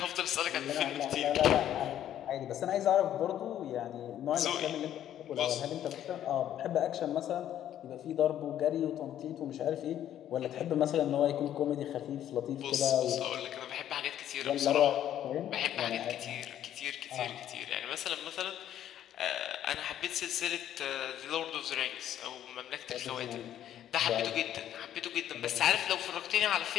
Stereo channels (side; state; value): right; quieter; 11.2 dB